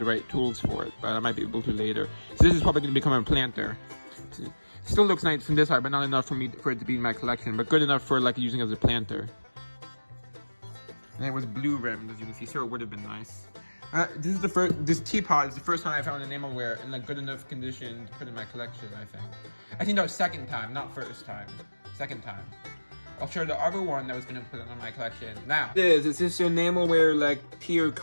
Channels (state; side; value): inverted; both; correlation -1.00